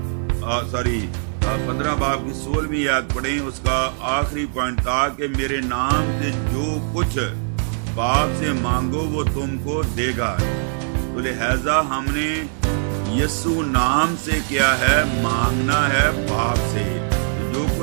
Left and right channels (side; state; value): left; silent; digital silence